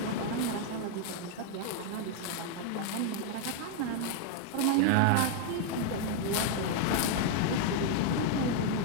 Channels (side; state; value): both; different; correlation 0.00